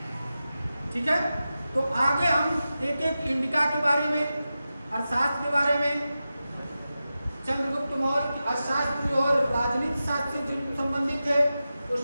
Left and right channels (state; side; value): inverted; both; correlation -0.93